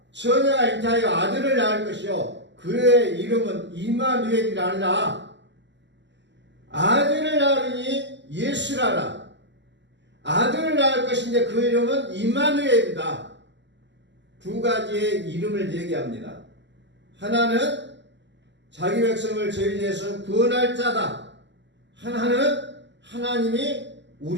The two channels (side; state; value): left; late; 0.52 ms